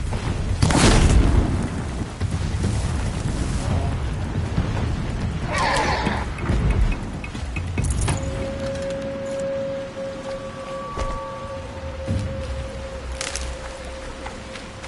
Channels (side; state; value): both; identical; correlation 1.00